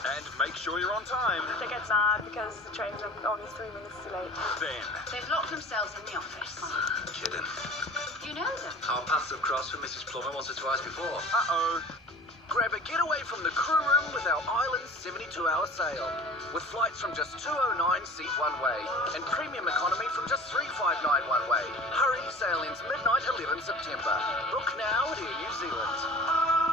And make sure you're on time. They get mad because the trains are only 3 minutes too late. Then. They've locked themselves in the office. Kidding. You know them? Our paths have crossed with Mrs. Plummer once or twice before. Uh-oh. Grab a getaway from the crew room with our Island 72-hour sale. With flights from just $209 seat one way and premium economy from just $359 one way. Hurry, sale ends midnight 11 September. Book now at Air New Zealand.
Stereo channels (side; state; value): both; normal; correlation 0.41